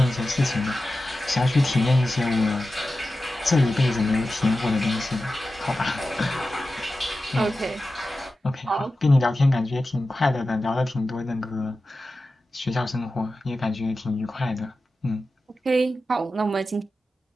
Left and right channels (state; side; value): normal; both; correlation 0.93